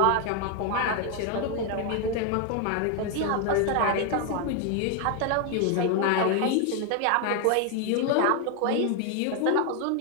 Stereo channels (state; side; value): different; both; correlation 0.01